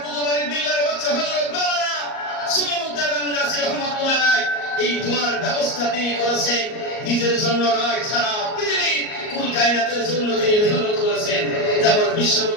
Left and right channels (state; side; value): late; right; 38 ms